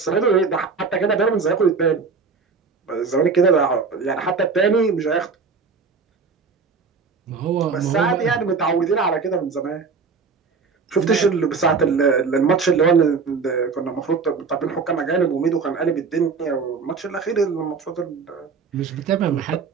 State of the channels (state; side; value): quieter; left; 5.0 dB